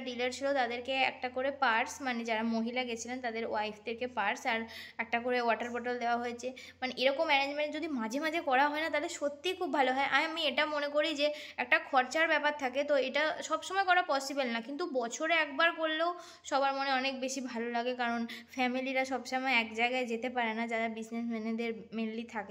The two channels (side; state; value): both; identical; correlation 1.00